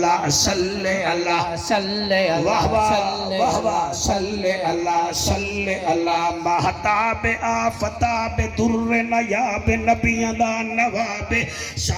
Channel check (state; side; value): identical; both; correlation 1.00